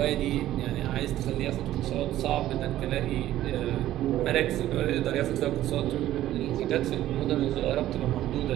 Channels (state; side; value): quieter; left; 13.7 dB